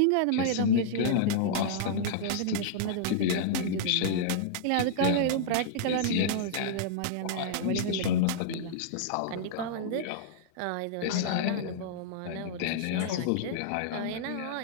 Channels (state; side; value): different; both; correlation -0.02